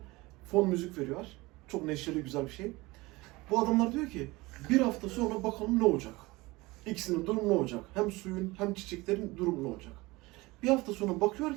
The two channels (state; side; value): quieter; left; 21.8 dB